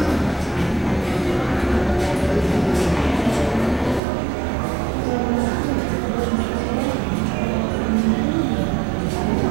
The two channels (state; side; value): drops out; left; at 4.0 s